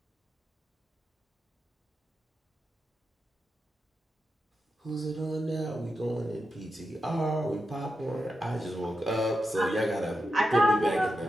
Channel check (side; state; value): both; normal; correlation 0.88